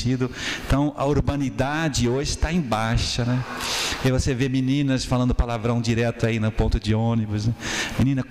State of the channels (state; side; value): identical; both; correlation 1.00